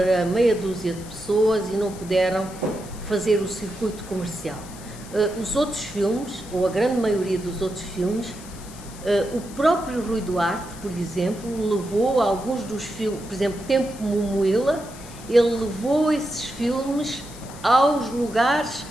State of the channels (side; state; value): left; noise; hiss, 18 dB below the sound